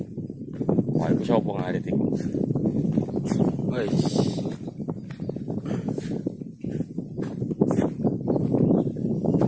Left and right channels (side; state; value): both; identical; correlation 1.00